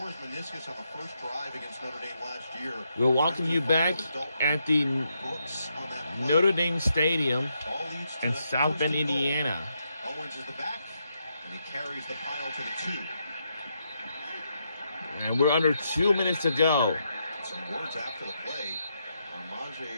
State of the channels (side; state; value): both; inverted; correlation -0.80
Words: his meniscus on the first drive against Notre Dame last year. We'll welcome you back at the Notre Dame Stadium in South Bend, Indiana. Owens is the back, and he carries the pile to the 2. And we're under 2 minutes to go. Some words after the play.